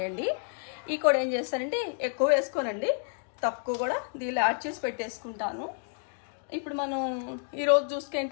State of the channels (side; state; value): right; silent; 58 dB below the other